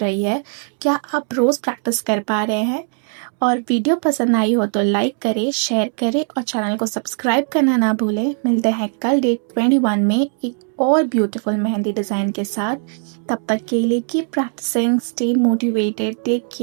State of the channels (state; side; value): silent; left; 56 dB below the other